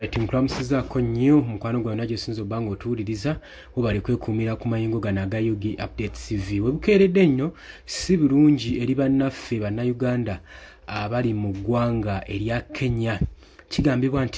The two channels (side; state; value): both; identical; correlation 1.00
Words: Timukulamusizaako nnyo mukwano gwawe nagyo sinza obanga otuwuliriza webale kwekumira ku mayingo gano aga Yugi Update TV. Webukeeredde nnyo si birungi eri bannaffe bannayuganda abali mu ggwanga erya Kenya. Kigambibwa